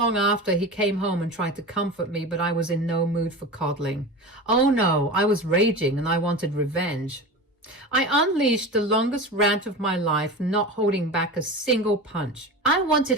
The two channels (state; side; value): normal; both; correlation 0.29